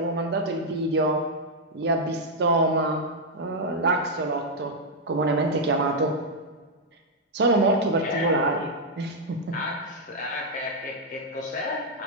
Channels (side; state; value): both; normal; correlation -0.03